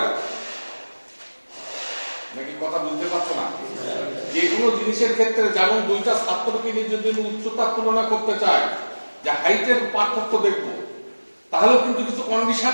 না। নাকি কথা বুঝতে পারছো না? যে কোনো জিনিসের ক্ষেত্রে যেমন দুইটা ছাত্রকে নিয়ে যদি উচ্চতার তুলনা করতে চায়, যে হাইটের পার্থক্য দেখবো, তাহলেও কিন্তু কিছু কন্ডিশন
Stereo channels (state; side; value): inverted; both; correlation -1.00